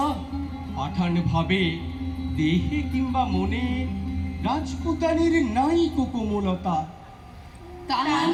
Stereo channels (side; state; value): both; identical; correlation 1.00